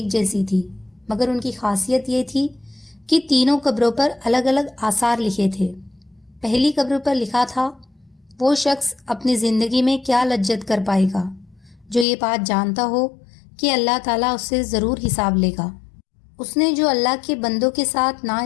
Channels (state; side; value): drops out; right; at 12.1 s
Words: جیسی تھی، مگر ان کی خاصیت یہ تھی کہ تینوں قبروں پر الگ الگ آثار لکھے تھے۔ پہلی قبر پر لکھا تھا، وہ شخص اپنی زندگی میں کیا لجت کر پائے گا جو یہ بات جانتا ہو کہ اللہ تعالیٰ اس سے ضرور حساب لے گا۔ اس نے جو اللہ کے بندوں کے ساتھ